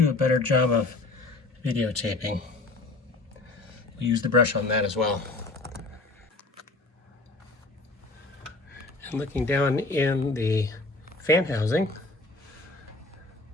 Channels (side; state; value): right; quieter; 3.1 dB